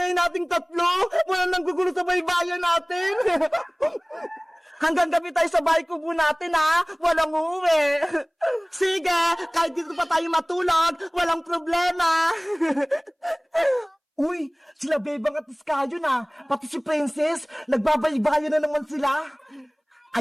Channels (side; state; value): both; identical; correlation 1.00